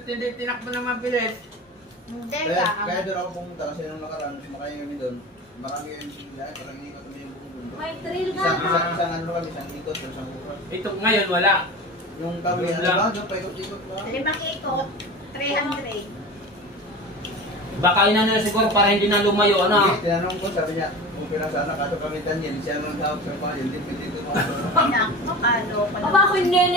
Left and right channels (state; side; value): normal; both; correlation 0.32